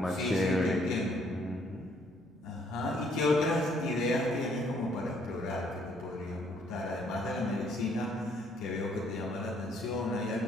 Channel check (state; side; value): normal; both; correlation 0.66